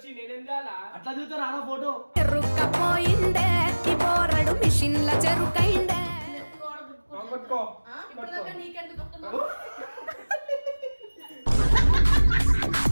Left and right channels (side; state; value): both; inverted; correlation -1.00